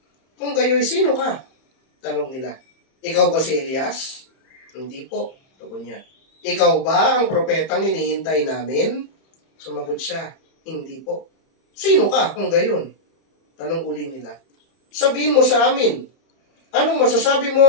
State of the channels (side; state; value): right; late; 31 ms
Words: Kung gayo'y sino ka? Tanong nila. Ikaw ba si Elias? Hindi po. Tugon niya. Ikaw ba ang propetang hinihintay namin? Sumagot siya. Hindi po. Sino ka kung gayon? Tanong uli nila. Sabihin mo sa amin. Anong masasabi